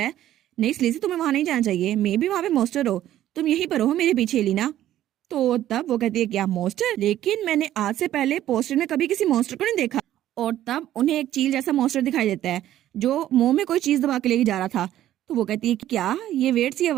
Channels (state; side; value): quieter; left; 12.7 dB